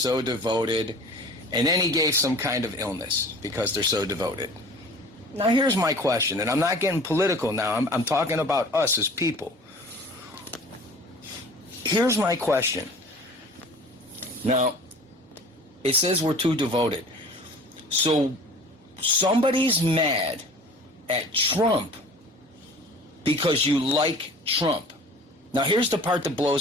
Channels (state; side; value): normal; both; correlation 0.44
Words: devoted, and then he gave some kind of illness because they're so devoted. Now here's my question, and I'm not getting political now, I'm talking about us as people. Here's my question. Now, it says we're too devoted. So somebody's mad at Trump because you like Trump. Now here's the part that